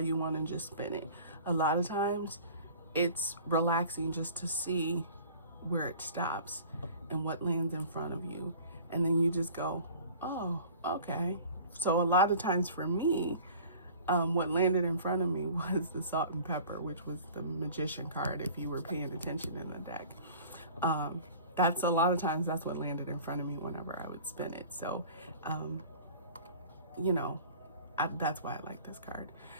one and just spin it. A lot of times it's relaxing just to see where it stops and what lands in front of you. And then you just go, oh, okay. So a lot of times for me, what landed in front of me was the salt and pepper, which was the magician card, if you were paying attention in the deck. That's a lot of times that's what landed in front of me whenever I would spin it. So, you know, that's why I like this card.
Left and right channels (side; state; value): both; inverted; correlation -0.45